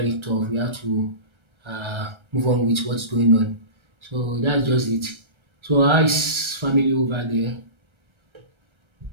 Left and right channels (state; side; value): late; left; 1.3 ms